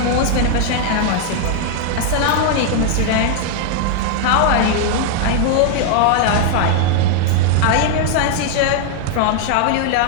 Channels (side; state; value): both; different; correlation 0.00